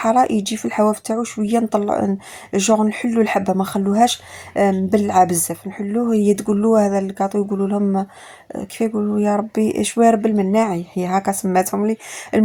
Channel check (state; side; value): identical; both; correlation 1.00